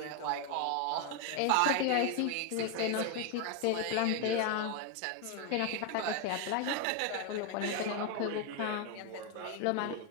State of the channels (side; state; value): both; different; correlation 0.01